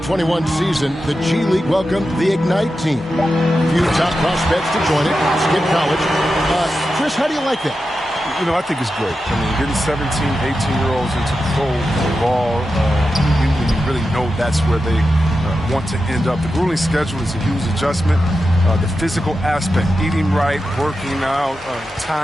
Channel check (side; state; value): both; normal; correlation 0.90